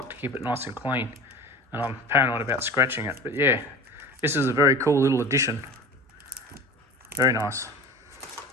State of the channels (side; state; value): both; normal; correlation 0.37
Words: to keep it nice and clean, and I'm paranoid about scratching it. But yeah, this is a very cool little addition. Very nice.